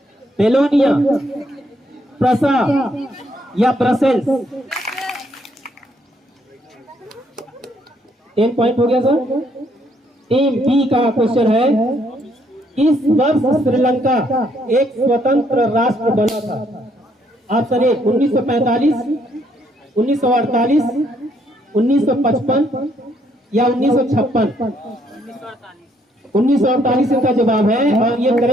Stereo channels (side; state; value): both; normal; correlation 0.70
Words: बेलोनिया, प्रसा या ब्रसेल्स। 10 पॉइंट हो गया सर। टीम बी का क्वेश्चन है, इस वर्ष श्रीलंका एक स्वतंत्र राष्ट्र बना था? ऑप्शन ए 1945, 1948, 1955 या 1956। 1948 इनका जवाब है और ये